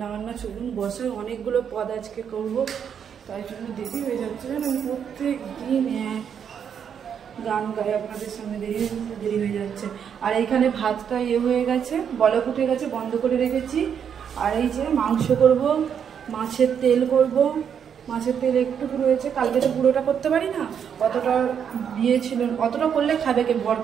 বান্না চলুন বসে, অনেকগুলো পদ আজকে করব, তাই জন্য দেরি হয়ে যাচ্ছে। আমি প্রত্যেক দিন গান গাই, আপনাদের সামনে দেরি হয়ে যাচ্ছে। আর এইখানে ভাতটা হয়ে গেছে, বলক উঠে গেছে, বন্ধ করে রেখেছি। আর এই যে মাংস করব, মাছের তেল করব। মাছের তেল একটুকু রয়েছে, কালকে তো পুরোটা করতে পারি না, অতটা দিয়েছিল। অতটা করলে খাবে কে? বর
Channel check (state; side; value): quieter; left; 7.9 dB